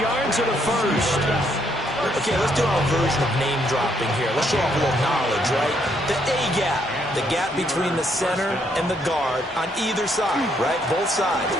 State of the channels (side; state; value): both; normal; correlation 0.72